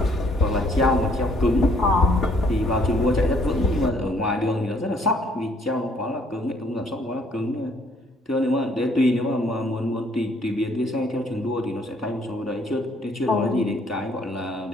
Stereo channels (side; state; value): both; normal; correlation 0.64